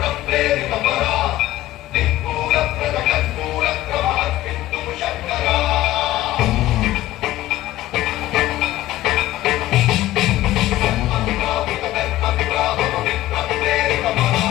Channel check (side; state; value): right; quieter; 15.4 dB